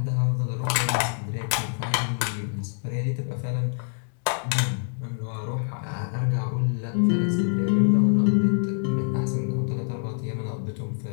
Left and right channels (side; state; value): right; silent; 58 dB below the other